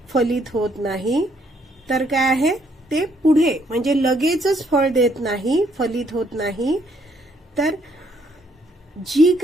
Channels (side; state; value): both; normal; correlation 0.69